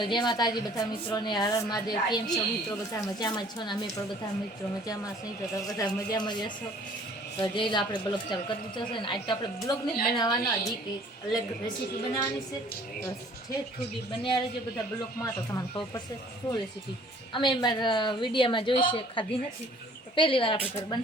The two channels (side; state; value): both; normal; correlation 0.54